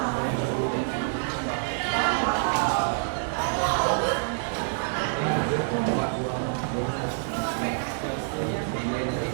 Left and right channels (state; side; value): silent; left; digital silence